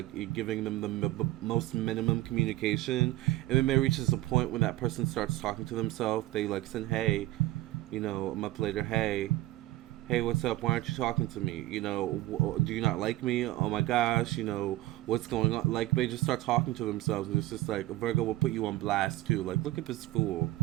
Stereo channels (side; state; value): left; quieter; 16.7 dB